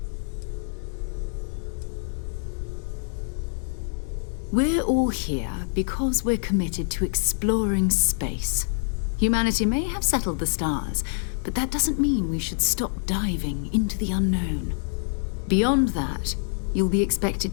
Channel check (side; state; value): right; silent; 58 dB below the other